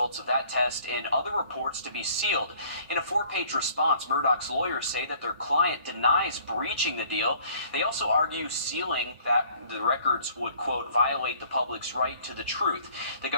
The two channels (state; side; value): inverted; both; correlation -0.55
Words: of that test and other reports to be sealed. In a 4-page response, Murdaugh's lawyers say that their client denies breaching the deal. They also argue sealing that the records would, quote, violate the public's right to the truth. The